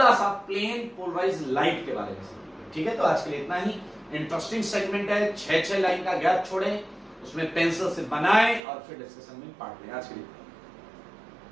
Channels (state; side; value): drops out; left; at 8.6 s